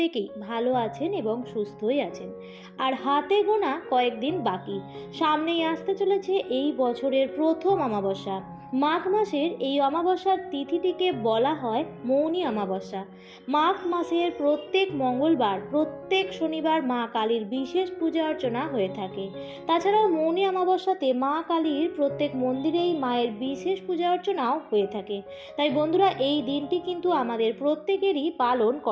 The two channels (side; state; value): both; identical; correlation 1.00